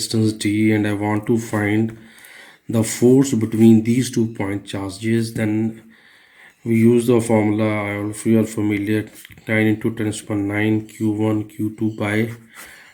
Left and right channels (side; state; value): both; identical; correlation 1.00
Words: d, and I want to find the force between these 2 point charges, then we use the formula. If you are familiar, 9 into 10 to the power 9 q1 q2 by